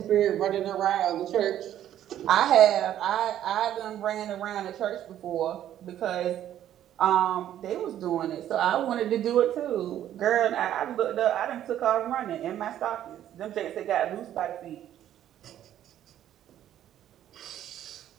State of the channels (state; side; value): quieter; left; 11.4 dB